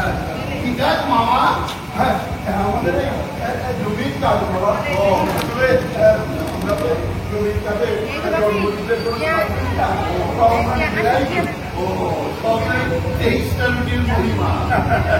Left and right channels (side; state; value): both; identical; correlation 1.00